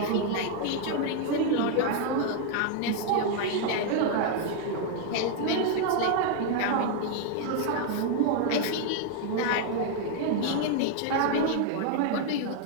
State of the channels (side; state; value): both; different; correlation 0.00